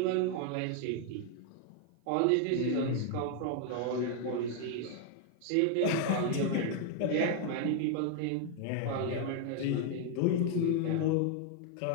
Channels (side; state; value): both; different; correlation 0.01